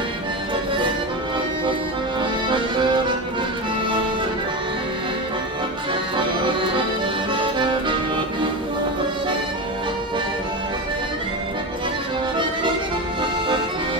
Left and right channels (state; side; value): normal; both; correlation 0.20